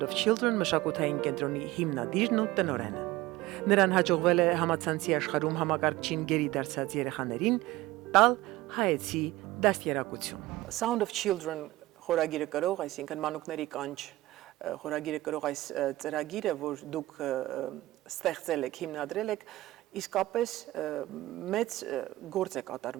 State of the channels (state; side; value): quieter; left; 17.9 dB